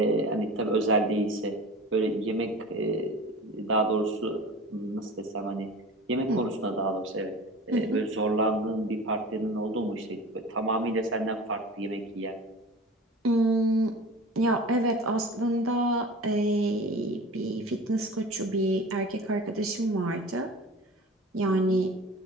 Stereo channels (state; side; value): normal; both; correlation 0.37